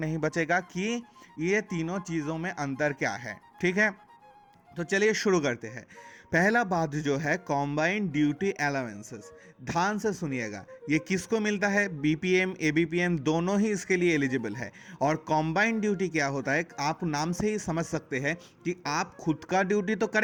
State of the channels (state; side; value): identical; both; correlation 1.00